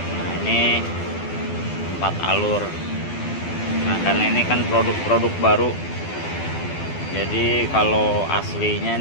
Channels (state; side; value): late; right; 12 ms